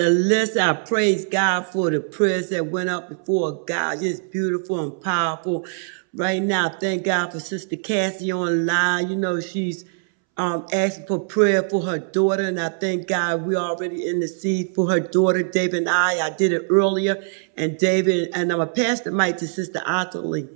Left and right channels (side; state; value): left; silent; 64 dB below the other